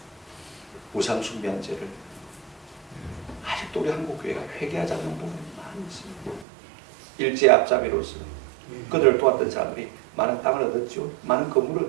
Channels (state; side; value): drops out; left; at 6.5 s